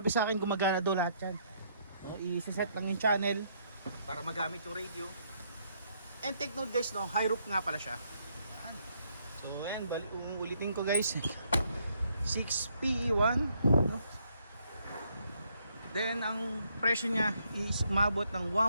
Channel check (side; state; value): both; inverted; correlation -0.72